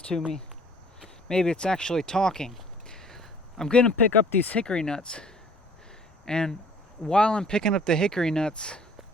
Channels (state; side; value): normal; both; correlation 0.53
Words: to me. Maybe it's actually talking. I'm going to pick up these hickory nuts. And while I'm picking up the hickory nuts,